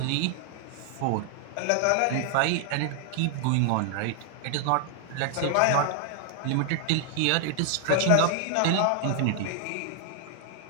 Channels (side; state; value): both; different; correlation 0.00